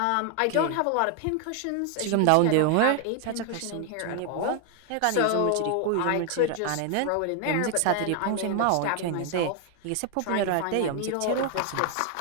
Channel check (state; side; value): different; both; correlation 0.00